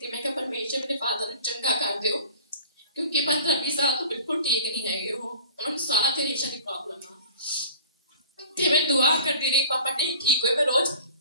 ਮੈਂ ਕਿਹਾ ਪਰਮੇਸ਼ਰ ਮੇਰੇ ਫਾਦਰ ਨੂੰ ਚੰਗਾ ਕਰ ਦਿਓ ਕਿਉਂਕਿ 15-20 ਸਾਲ ਤੋਂ ਬਿਲਕੁਲ ਠੀਕ ਨਹੀਂ ਹੈਗੇ ਉਹ, ਉਹਨਾਂ ਨੂੰ ਸਾਹ ਤੇ ਰੇਸ਼ਾ ਦੀ ਪ੍ਰੋਬਲਮ ਆ। ਤੇ ਮੈਂ ਦੁਆ ਕਰਦੀ ਰਹੀ, ਪਾਪਾ ਨਹੀਂ ਠੀਕ ਹੋਏ। ਮੈਂ ਰੋਜ਼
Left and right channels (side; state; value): both; inverted; correlation -0.45